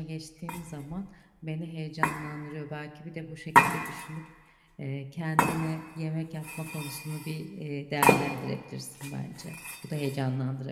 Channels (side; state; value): both; identical; correlation 1.00